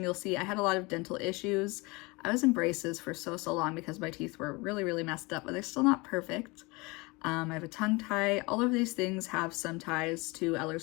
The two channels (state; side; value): quieter; right; 25.5 dB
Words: you'll see. I had a lot of dental issues. I was in braces for so long because my teeth were really messed up, but they're still not perfect. I have a tongue tie. All of these things have some ties to